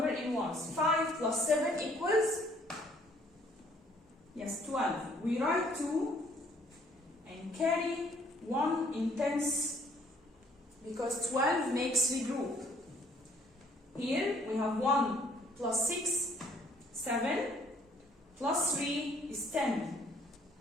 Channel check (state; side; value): normal; both; correlation 0.62